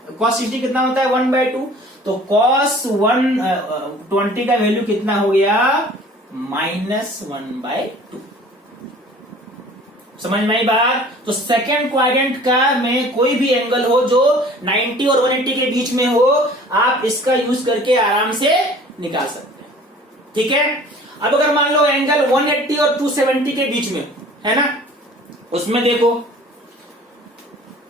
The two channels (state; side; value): normal; both; correlation 0.48